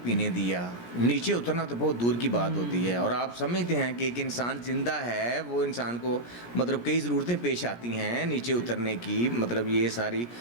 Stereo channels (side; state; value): right; late; 17 ms